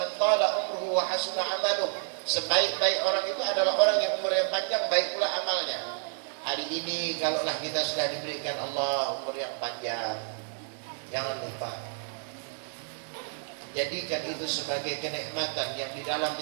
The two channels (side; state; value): left; silent; 57 dB below the other